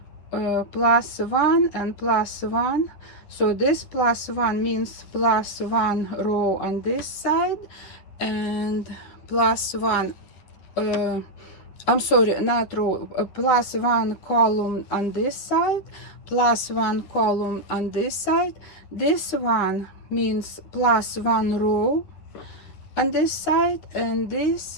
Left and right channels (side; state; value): right; late; 9.9 ms